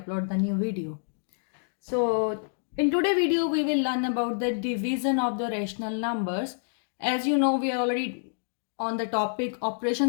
the new video. So, in today's video, we will learn about the division of the rational numbers. As you know, we are already on the topic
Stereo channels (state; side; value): silent; right; digital silence